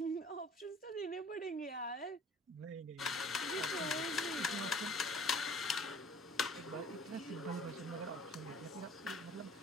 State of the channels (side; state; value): both; normal; correlation 0.50